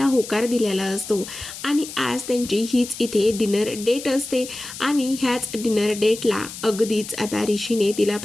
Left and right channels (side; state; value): left; noise; hiss, 11 dB below the sound